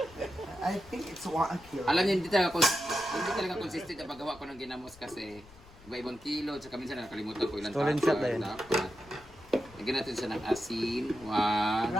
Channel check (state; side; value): noise; left; rumble, 22 dB below the sound